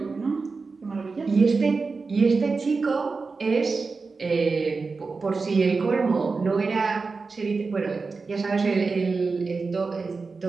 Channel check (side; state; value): left; quieter; 4.3 dB